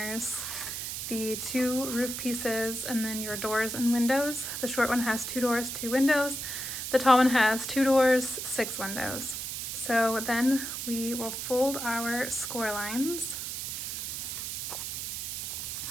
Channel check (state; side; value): noise; right; hiss, 5 dB below the sound